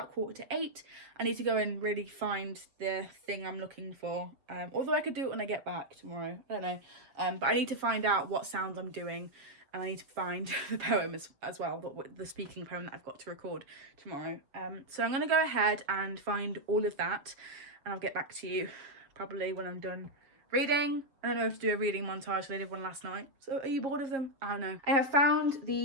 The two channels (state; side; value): late; left; 7.4 ms